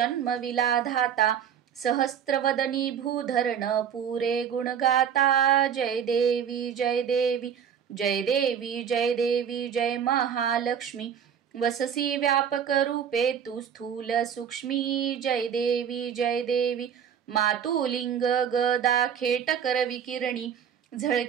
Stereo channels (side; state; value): left; quieter; 8.3 dB